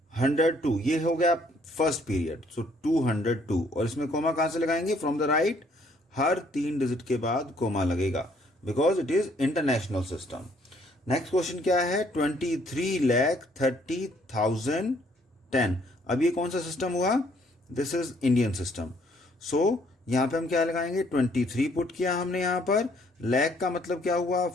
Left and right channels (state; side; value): normal; both; correlation 0.65